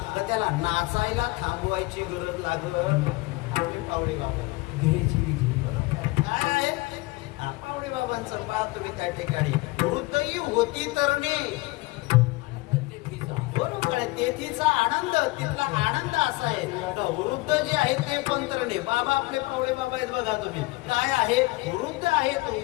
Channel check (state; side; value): quieter; right; 22.3 dB